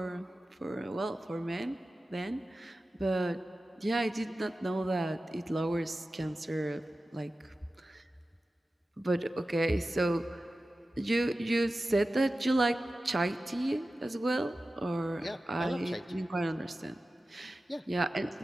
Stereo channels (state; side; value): normal; both; correlation 0.95